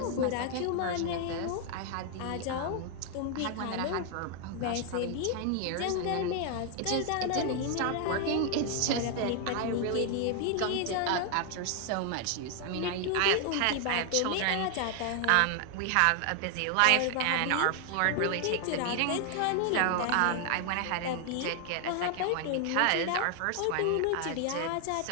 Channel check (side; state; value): both; different; correlation 0.00